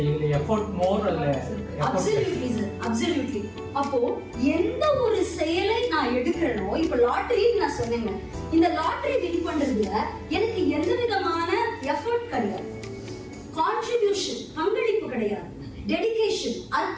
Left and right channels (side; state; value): both; identical; correlation 1.00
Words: Absolutely. அப்போ எந்த ஒரு செயலை நான் எடுக்கிறேனோ, இப்ப லாட்டரி நான் சொன்னேங்க, இந்த லாட்டரி வின் பண்றதுல எனக்கு எந்த விதமான எஃபர்ட் கிடையாது, கான்ட்ரிபியூஷன் பங்களிப்பு கிடையாது, டெடிகேஷன்